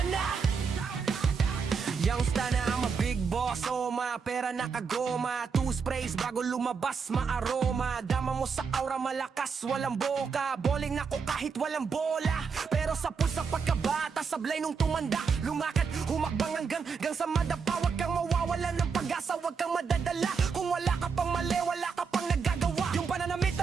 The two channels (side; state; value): left; quieter; 5.7 dB